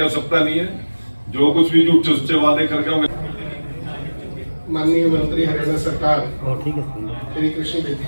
आवश्यकता नहीं है। जो कुछ भी झूठे सच्चे वादे करके होंगे माननीय मंत्री हरियाणा सरकार श्री कृष्ण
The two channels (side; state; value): both; inverted; correlation -1.00